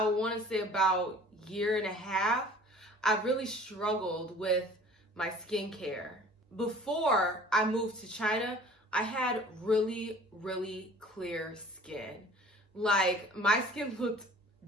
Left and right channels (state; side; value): normal; both; correlation 0.48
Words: want to say about year and a half, I've really struggled with my skincare. Before I moved to China, I had really clear skin. Like, my skin looked